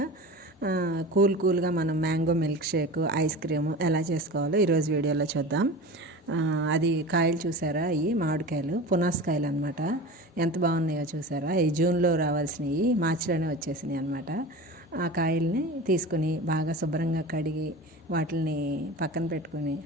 కూల్గా మనం mango milk shake, ice cream ఎలా చేసుకోవాలో ఈరోజు వీడియోలో చూద్దాం. అది కాయలు చూసారా, ఈ మామిడికాయలు పునాసకాయలు అనమాట. ఎంత బాగున్నాయో చూసారా. ఈ జూన్లో రావాల్సినవి మార్చిలోనే వచ్చేసినాయి అనమాట. ఆ కాయల్ని తీసుకుని బాగా శుభ్రంగా కడిగి వాటిని పక్కన పెట్టుకుని,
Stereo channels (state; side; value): normal; both; correlation 0.33